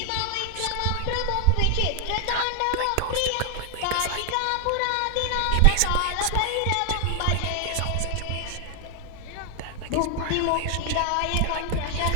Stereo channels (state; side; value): different; both; correlation 0.00